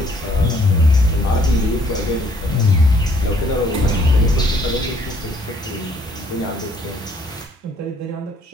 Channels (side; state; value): both; normal; correlation 0.63